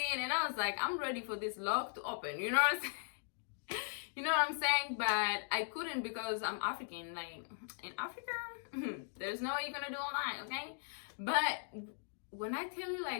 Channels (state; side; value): silent; right; digital silence